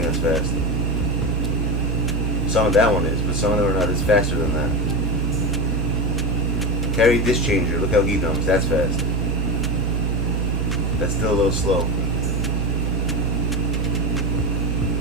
that's fast. Some of that one is, but some of them are not as faster than that. Carry disc changer. Look how he dunks. That's fast. That's still a little slow.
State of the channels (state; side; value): normal; both; correlation 0.17